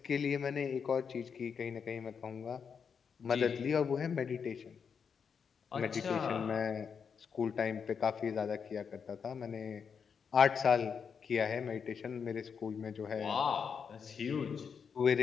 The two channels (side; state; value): right; quieter; 6.5 dB